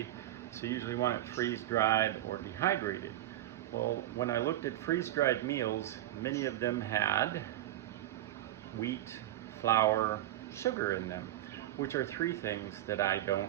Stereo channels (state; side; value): quieter; left; 13.9 dB